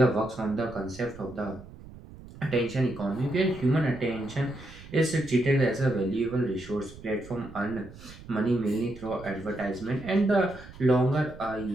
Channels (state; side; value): noise; right; rumble, 17 dB below the sound